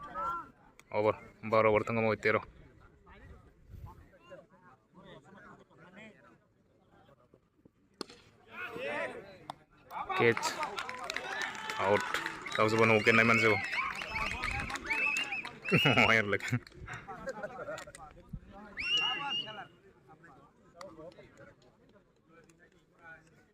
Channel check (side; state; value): both; identical; correlation 1.00